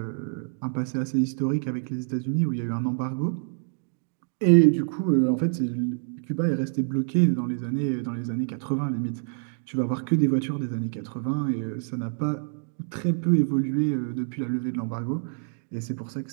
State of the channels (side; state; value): left; silent; digital silence